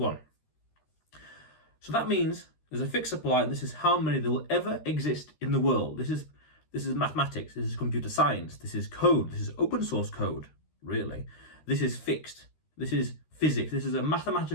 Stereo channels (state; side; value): late; right; 13 ms